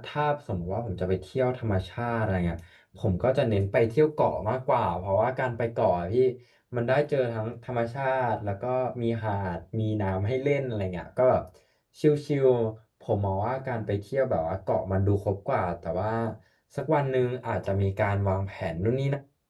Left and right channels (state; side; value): identical; both; correlation 1.00